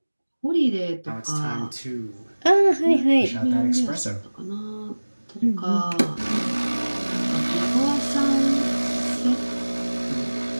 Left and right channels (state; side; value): inverted; both; correlation -1.00